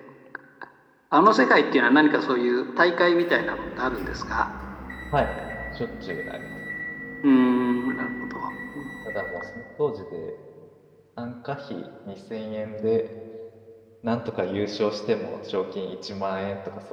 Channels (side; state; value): both; identical; correlation 1.00